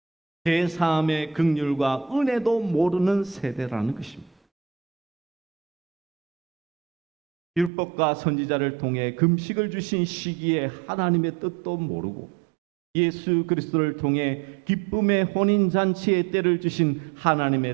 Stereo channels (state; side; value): drops out; left; at 7.7 s